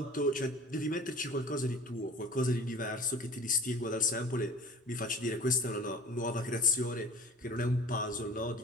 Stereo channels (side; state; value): both; normal; correlation 0.40